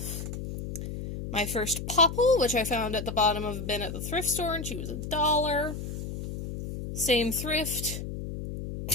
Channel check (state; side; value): noise; left; hum, 7 dB below the sound